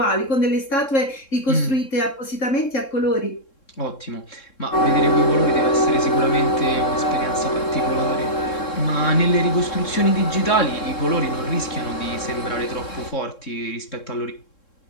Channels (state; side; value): late; right; 3.7 ms